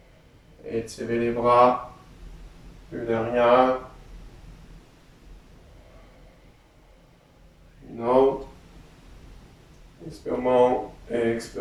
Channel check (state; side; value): identical; both; correlation 1.00